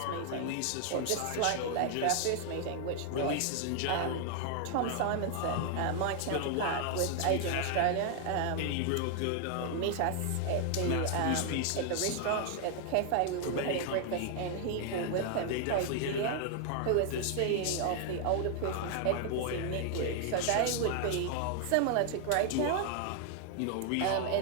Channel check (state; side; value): different; both; correlation 0.00